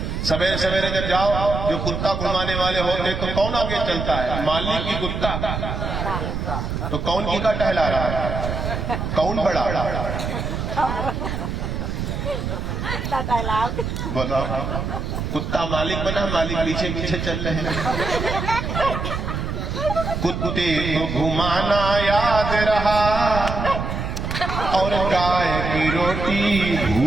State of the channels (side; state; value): right; noise; rumble, 3 dB below the sound